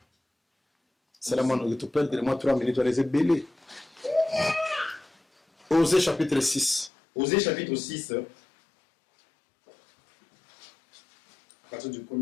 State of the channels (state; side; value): drops out; right; at 6.9 s